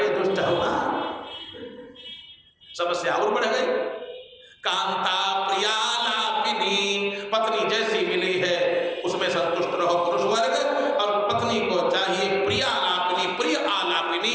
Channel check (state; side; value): identical; both; correlation 1.00